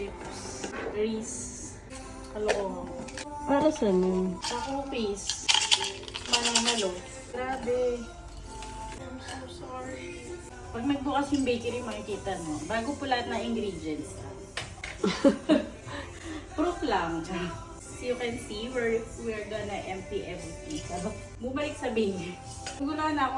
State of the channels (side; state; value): both; identical; correlation 1.00